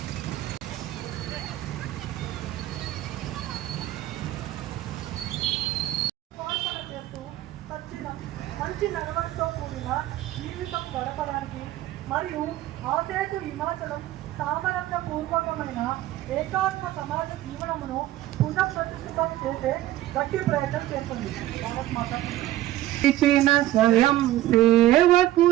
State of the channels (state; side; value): quieter; left; 14.6 dB